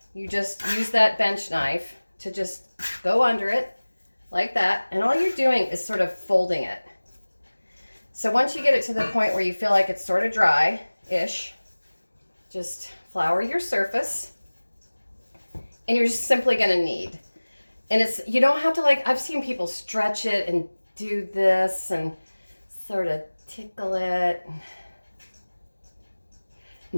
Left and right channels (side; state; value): both; inverted; correlation -1.00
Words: you just use that bench knife to just go under it like that. And all you're doing is sort of folding it. So once you get it to the point where you feel like it's sort of dry-ish, just flour your surface. And you're just simply going to knead. And you don't have to, like, I've seen people stretch it and do this and sort of tickle it.